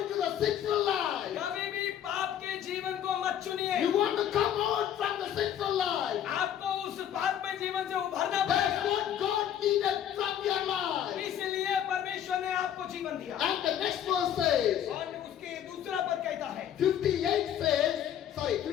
to the sinful life. कभी भी पाप के जीवन को मत चुनिए। You want to come out from the sinful life. आपको उस पाप में जीवन से उभरना That's पड़ेगा। what God needed from your life. इसलिए परमेश्वर ने आपको जीवन दिया। And the next verse says, और उसके दूसरा पद कहता है,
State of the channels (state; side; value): quieter; right; 10.0 dB